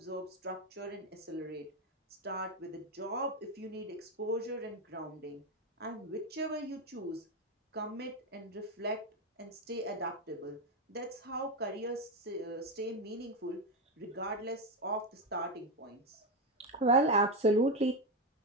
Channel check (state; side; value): normal; both; correlation 0.10